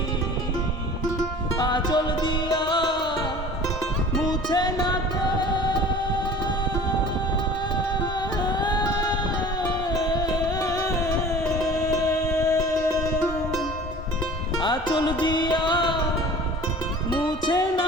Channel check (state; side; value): normal; both; correlation 0.43